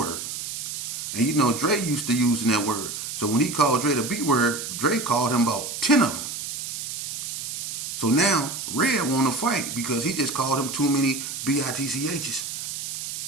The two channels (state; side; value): noise; right; hiss, 6 dB below the sound